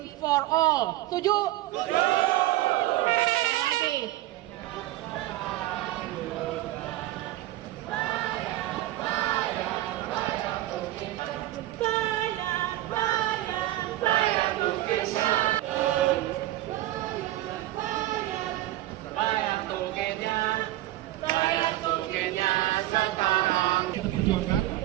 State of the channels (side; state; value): left; quieter; 15.9 dB